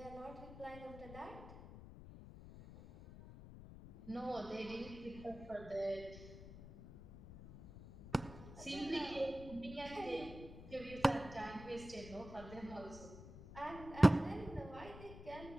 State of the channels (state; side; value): noise; left; rumble, 14 dB below the sound